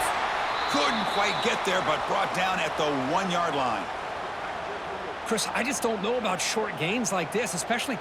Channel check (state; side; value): identical; both; correlation 1.00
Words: Couldn't quite get there, but brought down at the 1-yard line. Chris, I just don't know about short gains like this, especially